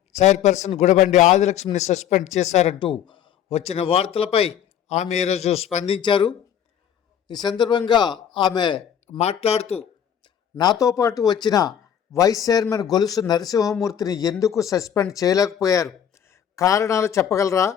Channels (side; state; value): right; quieter; 9.2 dB